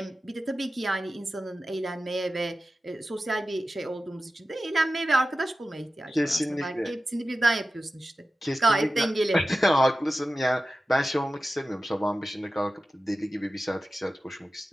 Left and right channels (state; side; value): normal; both; correlation 0.94